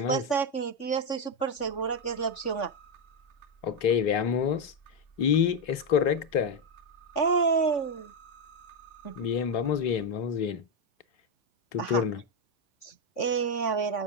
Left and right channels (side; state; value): right; late; 3.6 ms